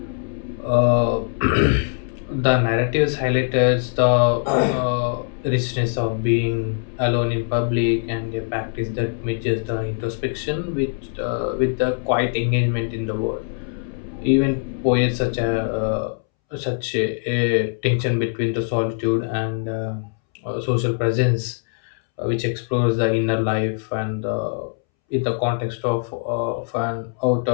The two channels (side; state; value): right; silent; 64 dB below the other